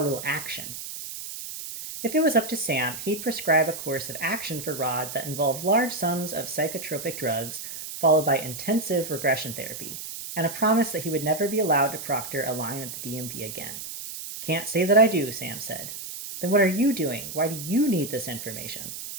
action. If it was up to Sam, he'd prescribe a course of action for Rod that involved large sums of psychotropic drugs, followed by intensive regression therapy, and a promise that he would never be allowed to proctor a line at the DMV again. Can't say that I do, Sam said. Then what are you doing? Why do you need this information?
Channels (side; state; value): right; noise; hiss, 9 dB below the sound